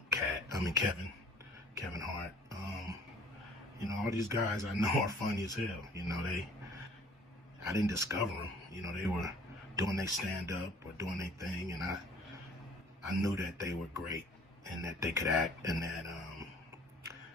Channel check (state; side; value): normal; both; correlation 0.53